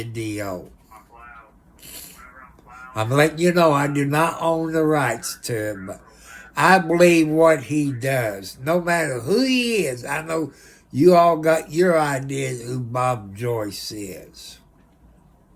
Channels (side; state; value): both; identical; correlation 1.00